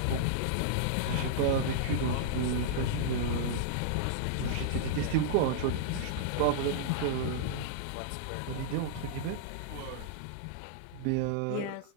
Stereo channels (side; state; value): both; different; correlation -0.02